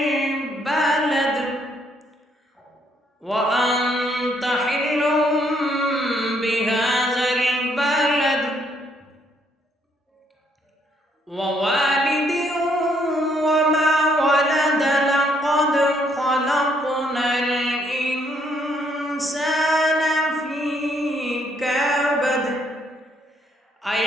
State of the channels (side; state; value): both; normal; correlation 0.70